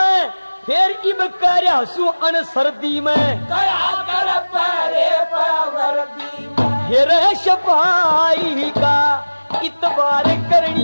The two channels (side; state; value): both; inverted; correlation -1.00